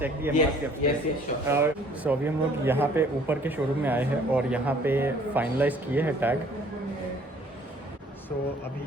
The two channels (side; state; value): both; normal; correlation 0.57